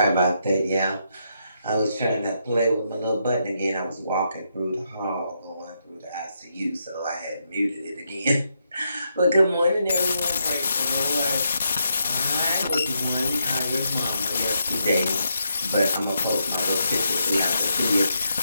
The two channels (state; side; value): inverted; both; correlation -0.80